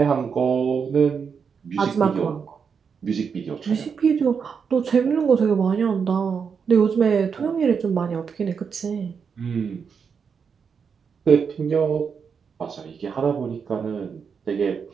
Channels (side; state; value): left; quieter; 6.3 dB